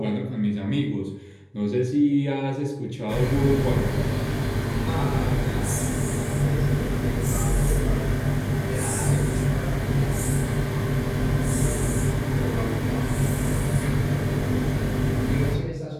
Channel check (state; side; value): identical; both; correlation 1.00